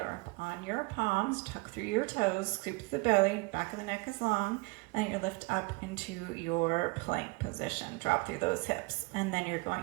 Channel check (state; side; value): quieter; left; 27.2 dB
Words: on your palms, tuck through your toes, scoop to the belly, back of the neck is long, and you lift up into your plank position. Drop through those hips, and then you're